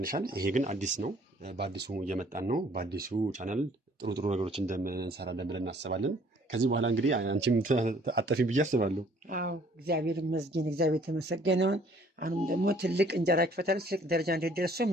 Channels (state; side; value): normal; both; correlation 0.58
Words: ይሄ ግን አዲስ ነው። በአዲሱ እየመጣን ነው። በአዲሱ ቻናል ጥሩ ነገሮች እንደምንሰራለን ብለን እናስባለን። ከዚህ በኋላ እንግዲህ አንቺም አጠፊ ብዬ አስባለሁ። አዎ እግዚአብሔር ይመስገን፣ እግዚአብሔር የተመሰገነውን። አሁንም ደግሞ ትልቅ እንጀራ ይክፈታል፣ ትልቅ ደረጃ እንዲደርሱ